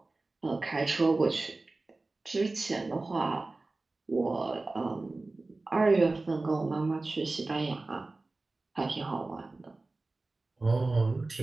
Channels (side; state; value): left; quieter; 3.3 dB